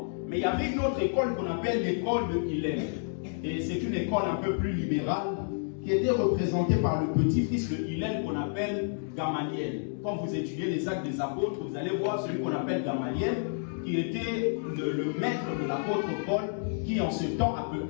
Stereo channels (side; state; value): right; silent; digital silence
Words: Mais il y avait une autre école qu'on appelle l'école de Hillel. Et c'est une école un peu plus libérale qui était représentée par le petit-fils de Hillel qu'on appelle Gamaliel. Quand vous étudiez les actes des apôtres, vous allez voir celui qu'on appelle Gamaliel, qui était le maître de l'apôtre Paul, qui en ce temps